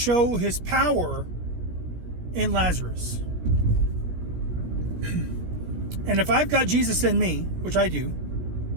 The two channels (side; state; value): left; late; 17 ms